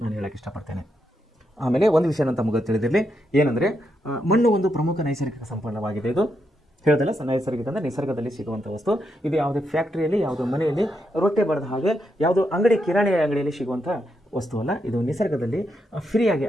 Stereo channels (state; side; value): normal; both; correlation 0.82